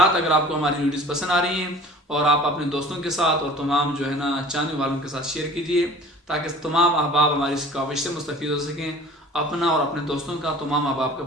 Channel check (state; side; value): normal; both; correlation 0.45